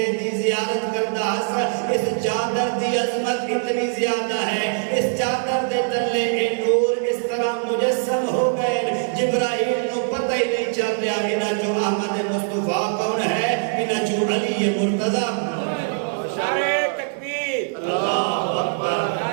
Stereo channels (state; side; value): silent; left; 64 dB below the other